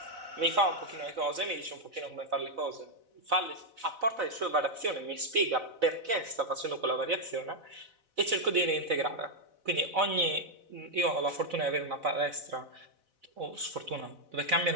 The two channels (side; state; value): left; late; 4.0 ms